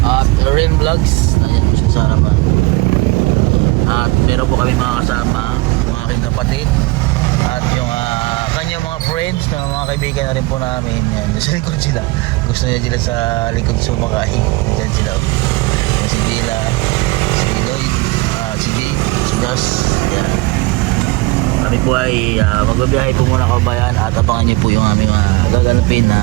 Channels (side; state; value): left; quieter; 22.8 dB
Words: at Lorraine Vlogs. Ayan po siya sa harapan. At meron po kami mga kasama, yung aking kapatid at yung kanyang mga friends na mga kaibigan na rin po namin. Yan, sa likod sila. Gusto niya sila sa likod sumakain. Yan sila. Yan si Bila, si Lloyd, si Jake, si Gus. Yan. Kami po ay magbabiyahe po muna kabayan at abangan niyo po yung aming gaganapin na